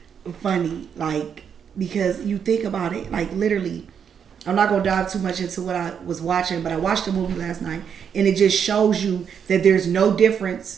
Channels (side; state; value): left; quieter; 7.6 dB